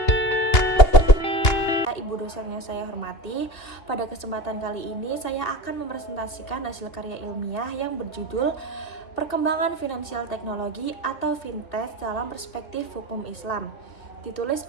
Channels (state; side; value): late; right; 3.0 ms